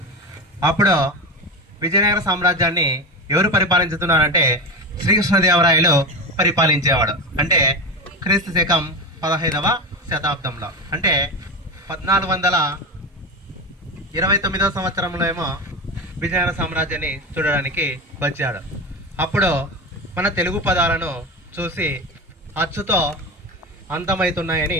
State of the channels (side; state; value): both; normal; correlation 0.21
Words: అప్పుడు విజయనగర సామ్రాజ్యాన్ని ఎవరు పరిపాలించుతున్నారంటే శ్రీకృష్ణదేవరాయలు పరిపాలించేవాడు. అంటే క్రీస్తు శకం 15వ శతాబ్దంలో, అంటే 1429వ సంవత్సరంలో ఏమో విజయనగర సామ్రాజ్యాన్ని చూడడానికి వచ్చాడు. అప్పుడు మన తెలుగు పదాలను చూసి అచ్చుతో